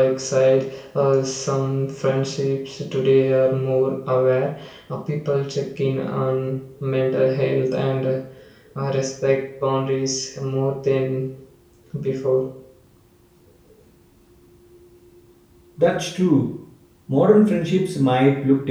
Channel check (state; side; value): identical; both; correlation 1.00